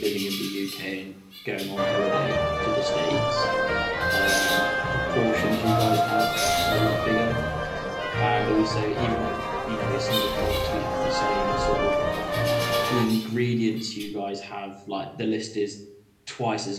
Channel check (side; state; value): both; identical; correlation 1.00